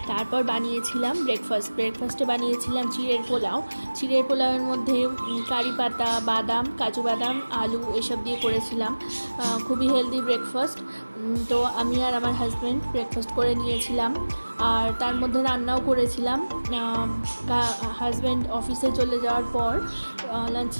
তারপর বানিয়েছিলাম ব্রেকফাস্টে বানিয়েছিলাম চিড়ের পোলাওয়ের মধ্যে কারি পাতা, বাদাম, কাজু বাদাম, আলু এসব দিয়ে করেছিলাম। খুবই হেলদি ব্রেকফাস্ট। তো আমি আর আমার হাজব্যান্ড ব্রেকফাস্ট করে নিয়েছিলাম, আর তার মধ্যে রান্নাও করেছিলাম। হাজব্যান্ড অফিসে চলে যাওয়ার পর লাঞ্চ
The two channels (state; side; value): inverted; both; correlation -1.00